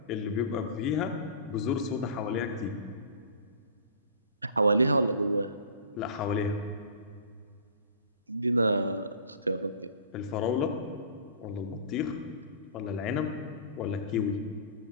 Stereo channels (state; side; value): inverted; both; correlation -0.41